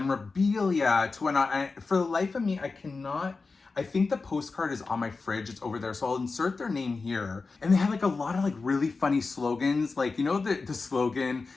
to whatnot. And for the life of me, I think the postcard is on my fridge. It's over there. So I'll insert their name here. And they had like a lot of like really funny slogans. Like, you know, the slogan,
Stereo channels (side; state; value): right; quieter; 4.1 dB